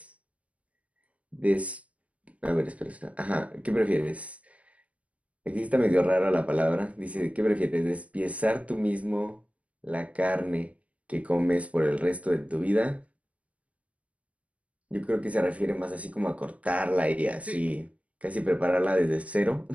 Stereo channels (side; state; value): left; late; 0.066 ms